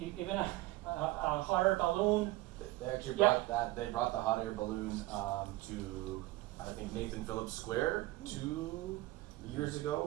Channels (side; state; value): left; quieter; 18.8 dB